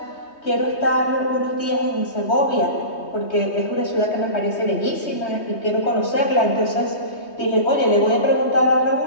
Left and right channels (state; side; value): late; right; 3.2 ms